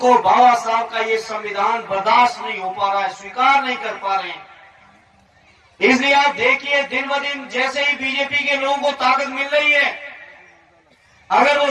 बाबा साहब का ये संविधान बर्दाश्त नहीं हो पा रहा है, स्वीकार नहीं कर पा रहे हैं। इसलिए आप देखिए, दिन ब दिन जैसे ही बीजेपी के लोगों को ताकत मिल रही है, अगर वो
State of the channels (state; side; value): identical; both; correlation 1.00